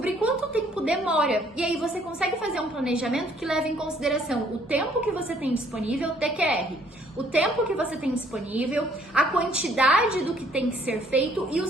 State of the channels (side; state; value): both; normal; correlation 0.62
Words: quanto tempo demora. E aí você consegue fazer um planejamento que leva em consideração o tempo que você tem disponível, TQR, o tempo que você tem disponível, a quantidade do que tem que ser feito e o